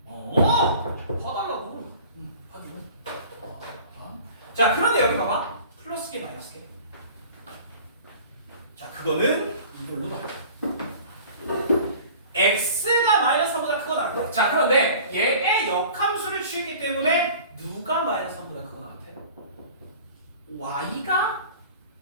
봐달라고. 하기로. 자, 그런데 여기 봐봐. 플러스 개 마이너스 개. 자, 그거는 이걸로 봐. x가 마이너스 3보다 크거나 같아. 자, 그런데 얘의 역함수를 취했기 때문에 누가 마이너스 3보다 크거나 같아? y가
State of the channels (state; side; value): inverted; both; correlation -0.44